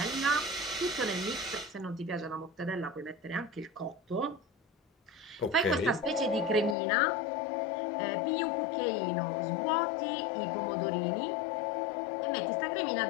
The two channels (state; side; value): drops out; right; at 6.8 s